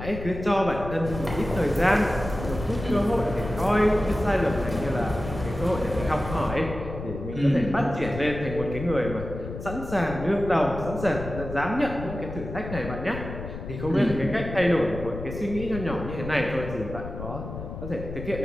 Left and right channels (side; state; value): left; noise; rumble, 9 dB below the sound